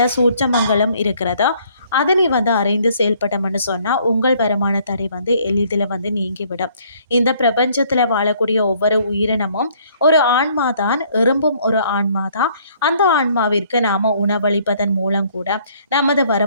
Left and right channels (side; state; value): both; inverted; correlation -0.62